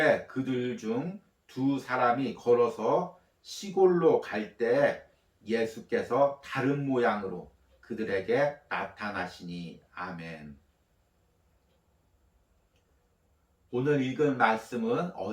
그들 중 두 사람이 걸어서 시골로 갈 때 예수께서 다른 모양으로 그들에게 나타나시니. 아멘. 오늘 읽은 말씀은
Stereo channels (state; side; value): identical; both; correlation 1.00